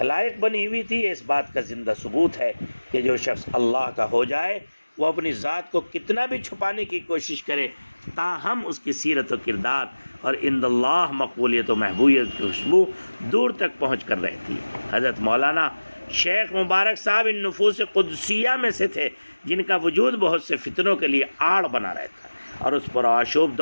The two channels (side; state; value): both; inverted; correlation -1.00